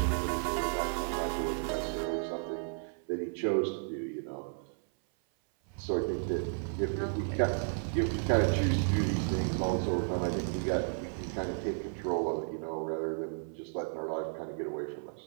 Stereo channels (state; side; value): silent; left; 56 dB below the other